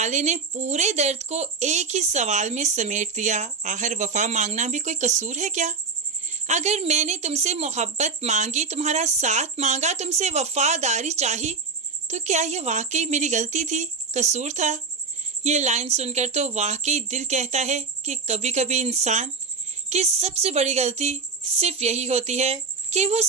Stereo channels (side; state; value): left; quieter; 4.7 dB